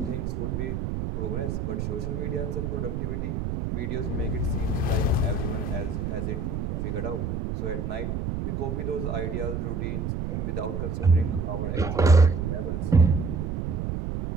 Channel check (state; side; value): noise; right; rumble, 2 dB below the sound